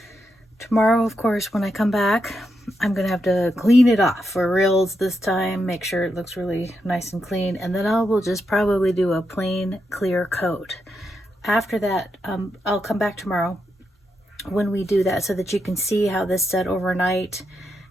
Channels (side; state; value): both; normal; correlation 0.83